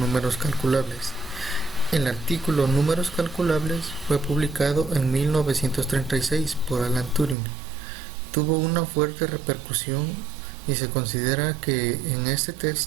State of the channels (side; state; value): left; drops out; at 7.4 s